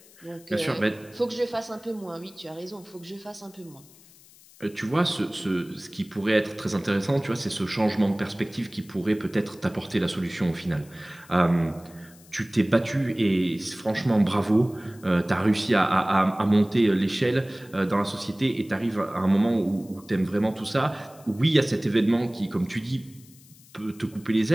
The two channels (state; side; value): noise; left; hiss, 25 dB below the sound